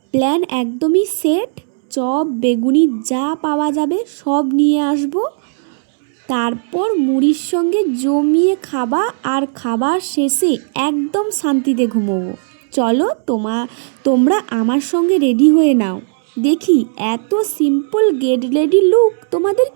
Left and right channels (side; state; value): left; silent; 69 dB below the other